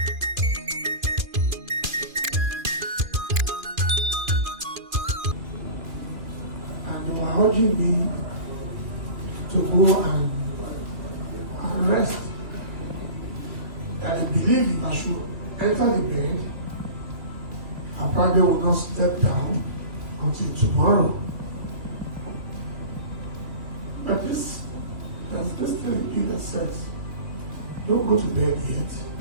And they were urging me to go and rest. That I believe if I should enter the bed, I probably will not step down until tomorrow. But there's this thing that says, don't go to bed yet.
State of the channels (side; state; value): left; late; 2.5 ms